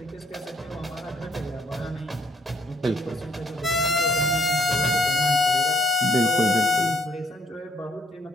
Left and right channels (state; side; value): normal; both; correlation 0.67